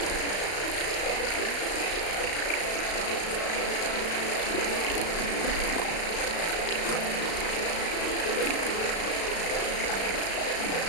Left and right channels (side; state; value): right; late; 35 ms